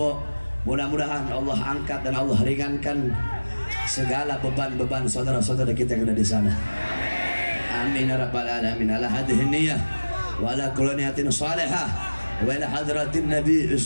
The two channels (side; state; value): both; inverted; correlation -1.00